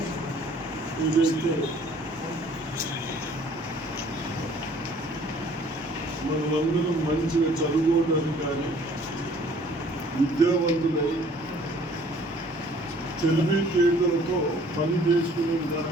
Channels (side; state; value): both; normal; correlation 0.56